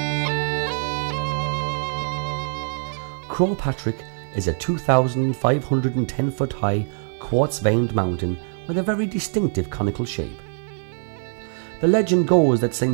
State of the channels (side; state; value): left; silent; 60 dB below the other